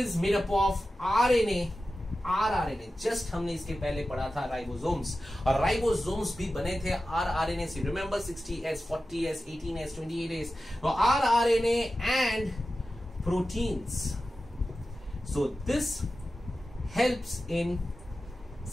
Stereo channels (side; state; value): both; normal; correlation 0.94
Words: made up of RNA, rRNA. Just हमने इसके पहले पढ़ा था राइबोसोम्स, और राइबोसोम्स भी बने थे rRNA से. Remember 60S, 40S, 18S, 28S. तो rRNA and proteins. So this helps in